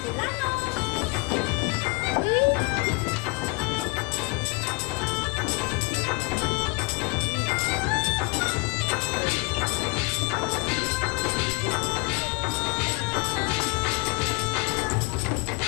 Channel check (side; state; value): right; quieter; 27.8 dB